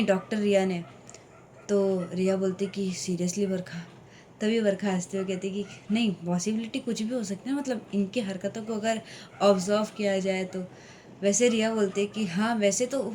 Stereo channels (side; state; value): both; identical; correlation 1.00